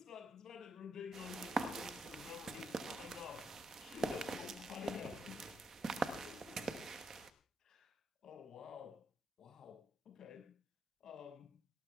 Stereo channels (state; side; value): normal; both; correlation 0.79